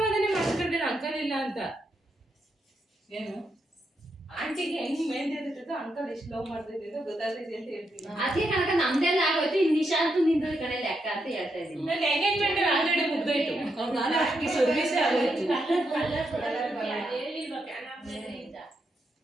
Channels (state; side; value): normal; both; correlation 0.82